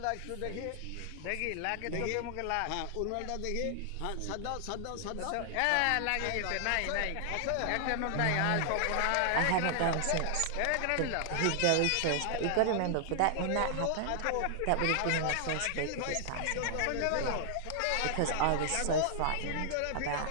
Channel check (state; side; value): different; both; correlation 0.00